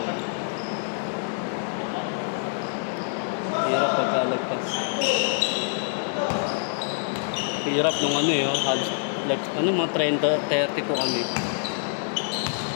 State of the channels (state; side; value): silent; right; digital silence